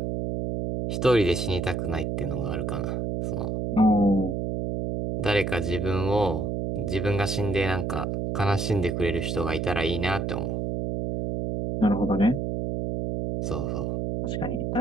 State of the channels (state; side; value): noise; right; hum, 1 dB below the sound